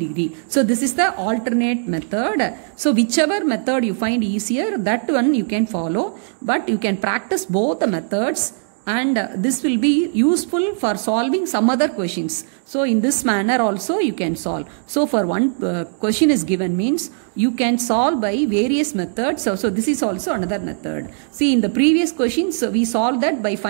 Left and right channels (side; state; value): left; silent; digital silence